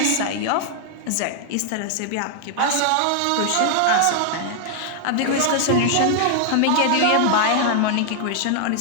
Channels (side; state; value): both; different; correlation 0.00